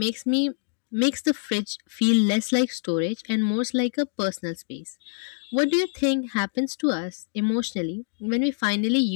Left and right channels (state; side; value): silent; right; digital silence